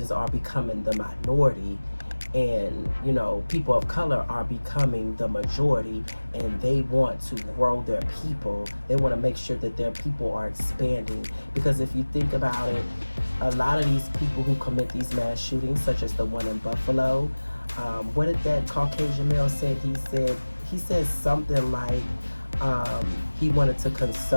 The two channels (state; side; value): inverted; both; correlation -1.00